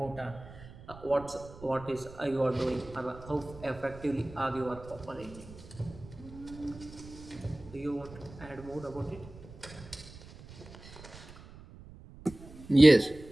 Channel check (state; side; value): noise; right; rumble, 18 dB below the sound